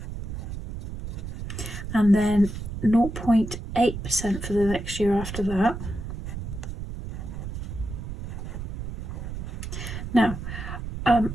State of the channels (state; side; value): noise; right; rumble, 7 dB below the sound